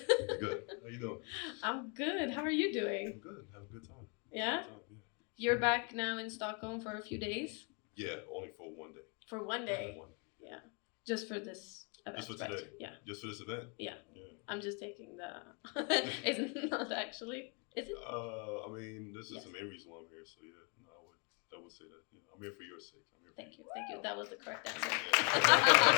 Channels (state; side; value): quieter; right; 33.9 dB